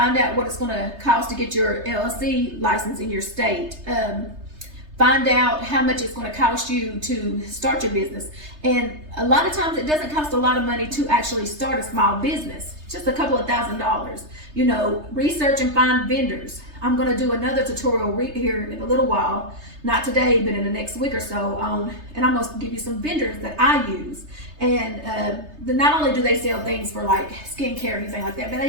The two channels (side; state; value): left; late; 3.3 ms